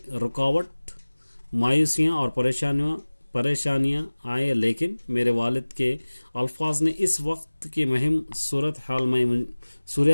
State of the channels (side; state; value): both; inverted; correlation -1.00